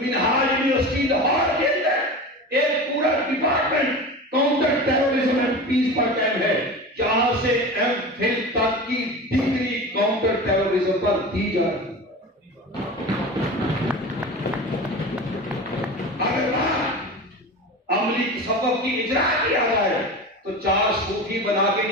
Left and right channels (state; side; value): normal; both; correlation 0.30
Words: یونیورسٹی لاہور کے اندر ایک پورا department counter terrorism and peace پر قائم ہے، جہاں سے ایم فل تک کی ڈگری کاؤنٹر ٹیررزم پر دی جا رہی ہے۔ اگر بات عملی تصوف کی اجرا کیا جائے تو 4 صوفی بنا کے